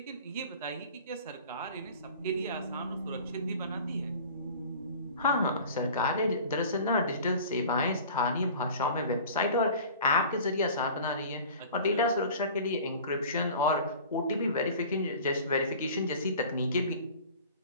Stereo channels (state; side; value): inverted; both; correlation -0.42